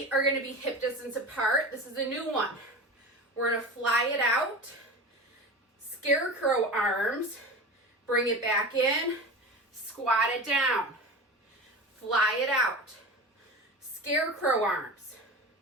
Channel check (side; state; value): both; normal; correlation 0.31